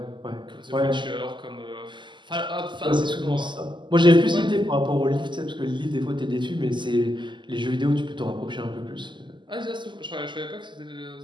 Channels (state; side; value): late; left; 0.23 ms